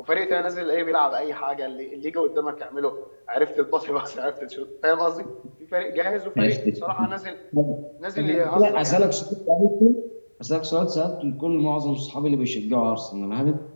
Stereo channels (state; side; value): inverted; both; correlation -1.00